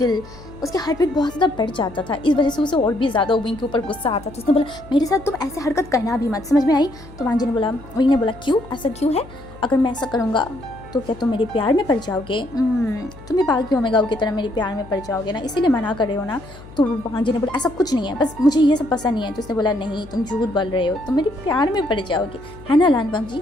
उसके हार्ट बीट बहुत ज़्यादा बढ़ जाता था। इस वजह से उसे और भी ज़्यादा विंग के ऊपर गुस्सा आता था। उसने बोला, मेरे साथ तुम ऐसे हरकत करना भी मत, समझ में आई? तो वांग जी ने बोला, विंग ने बोला, क्यों, ऐसा क्यों है? अगर मैं ऐसा करूँगा तो क्या तुम मेरे प्यार में पड़ जाओगे? तुम भी बाकी ओमेगा की तरह मेरे प्यार में पड़ जाओगे ना, इसीलिए मना कर रहे हो ना? तो वांग जी ने बोला, ऐसा कुछ नहीं है, बस मुझे ये सब पसंद नहीं है। तो उसने बोला, नहीं तुम झूठ बोल रहे हो, तुम मेरे प्यार में पड़ जाओगे, है ना वांग जी,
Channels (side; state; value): left; noise; hum, 19 dB below the sound